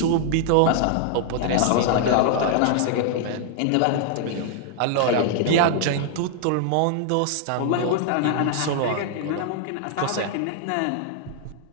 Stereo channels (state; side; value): different; both; correlation 0.00